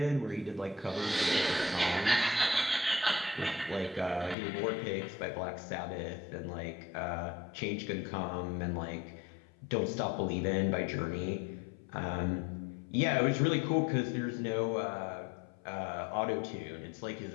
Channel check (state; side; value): drops out; right; at 4.4 s